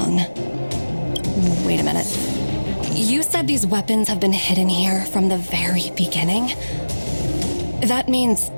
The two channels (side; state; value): both; inverted; correlation -1.00